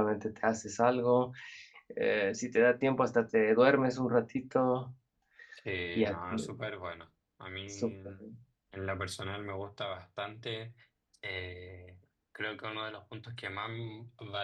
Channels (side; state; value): both; identical; correlation 1.00